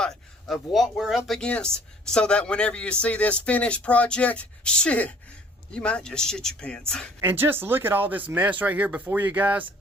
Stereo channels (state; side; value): normal; both; correlation 0.54